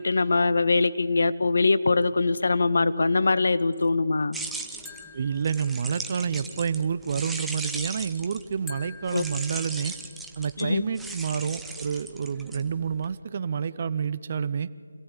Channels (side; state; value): both; inverted; correlation -0.83